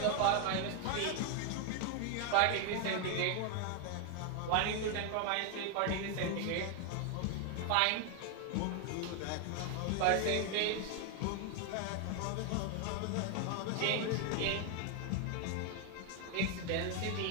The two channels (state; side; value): different; both; correlation 0.01